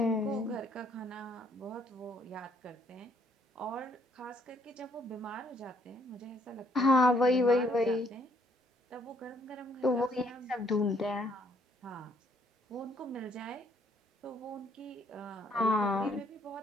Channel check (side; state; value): both; normal; correlation 0.66